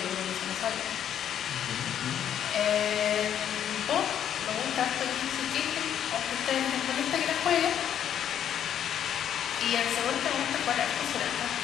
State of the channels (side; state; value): right; quieter; 9.7 dB